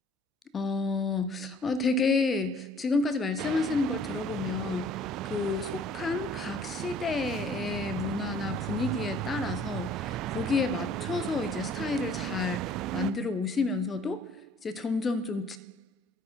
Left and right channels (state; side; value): normal; both; correlation 0.55